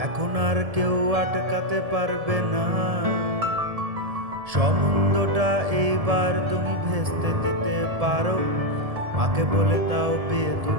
এখন আর কেউ আটকাতে পারবে না। সম্বন্ধটা এইবার তুমি ভেস্তে দিতে পারো, মাকে বলে দাও বিয়ে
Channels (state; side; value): late; left; 1.7 ms